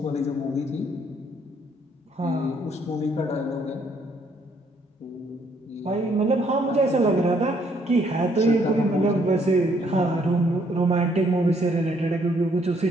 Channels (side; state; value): both; normal; correlation 0.68